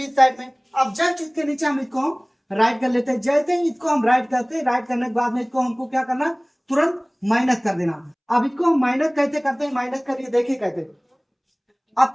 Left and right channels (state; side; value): identical; both; correlation 1.00